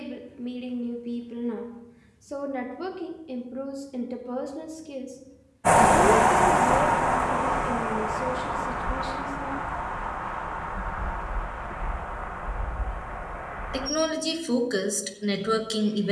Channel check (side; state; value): both; identical; correlation 1.00